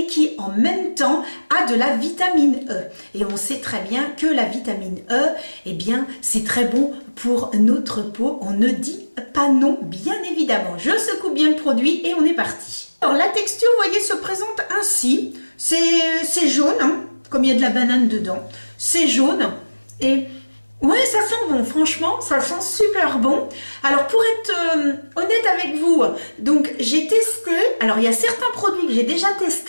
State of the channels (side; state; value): both; inverted; correlation -1.00